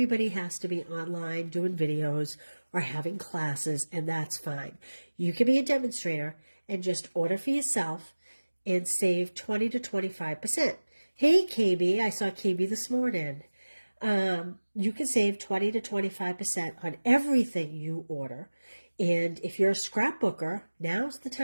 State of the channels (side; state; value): both; inverted; correlation -1.00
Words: has to be online doing videos or having classes, and that's fine. You can be a demonstrator and just order for yourself and save 20 to 25%. Hey, KB, I saw KB this morning. You can save 20 to 25% on everything you order. And if you're a scrapbooker, now's the